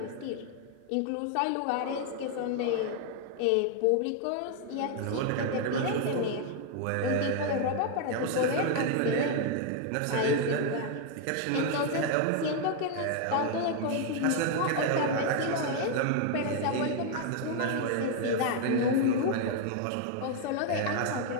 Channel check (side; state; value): both; different; correlation 0.00